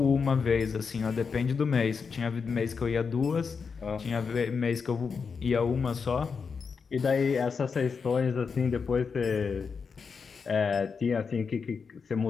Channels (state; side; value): quieter; right; 5.6 dB